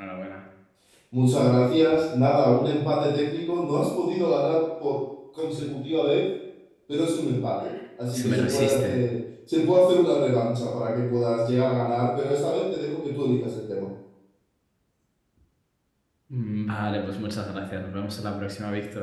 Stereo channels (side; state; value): both; identical; correlation 1.00